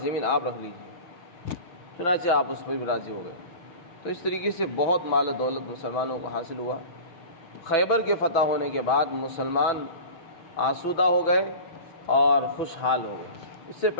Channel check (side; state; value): right; late; 6.1 ms